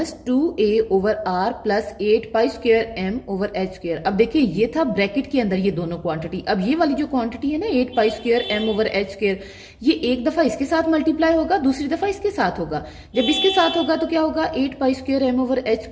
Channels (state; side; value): identical; both; correlation 1.00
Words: 2a over r plus 8 pi square m over h square. अब देखिए ये था ब्रैकेट के अंदर ये दोनों क्वांटिटी। अब ये वाली जो क्वांटिटी है ना 8 pi square m over h square, ये एक दफा इसके साथ मल्टीप्लाई होगा, दूसरी दफा इसके साथ होगा। जब इसके साथ होगा तो क्या होगा 8 pi square m over h